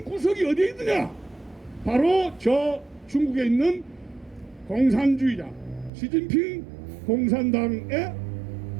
구석이 어디에 있느냐? 바로 저 중국에 있는 공산주의자 시진핑 공산당에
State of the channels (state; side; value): drops out; left; at 5.9 s